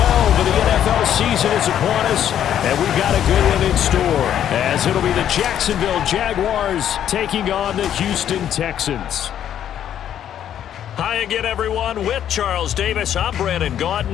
of the NFL season is upon us, and we've got a good one in store, as it'll be the Jacksonville Jaguars taking on the Houston Texans. Hi again, everyone. With Charles Davis, I'm Brandon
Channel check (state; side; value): quieter; right; 10.2 dB